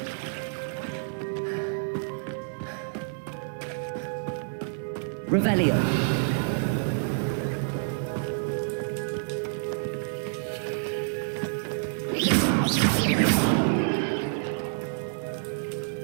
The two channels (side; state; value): left; silent; 56 dB below the other